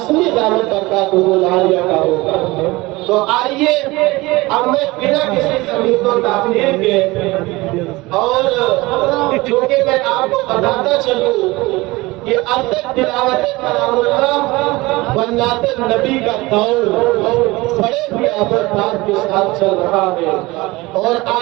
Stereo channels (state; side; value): quieter; left; 21.3 dB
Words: دامت برکاتہم العالیہ کا ہوگا۔ تو آئیے اب میں بنا کسی تمہید و تاخیر کے، اور چونکہ میں آپ کو بتاتا چلوں کہ اب تک تلاوت کلام اللہ بنات نبی کا دور بڑے ہی آبادات کے ساتھ چل رہا ہے، اور